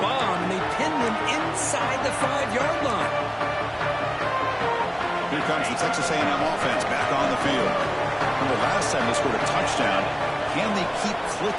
bomb. And they pinned him inside the 5-yard line. Here comes the Texas A&M offense back on the field. Remember last time they scored a touchdown. Can they keep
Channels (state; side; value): identical; both; correlation 1.00